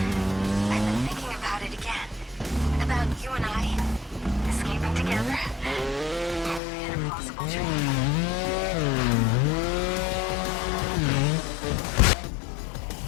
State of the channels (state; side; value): drops out; right; at 6.6 s